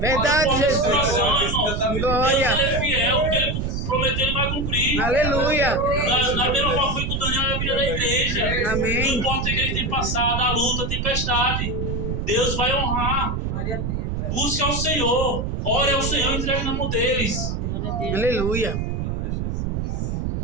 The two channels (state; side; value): noise; right; rumble, 1 dB below the sound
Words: Verdade, não importa a Jesus. situação, irmão. Glória. Deus ele é fiel, o que ele prometeu ele vai cumprir. Aleluia. Na mesma forma foi com o Daniel na vida da igreja. Amém. Não importa o que ele tem passado, a luta, a tempestade. Deus vai honrar. Busque ao Senhor. Ore ao Senhor e entregue na mão deles. Aleluia.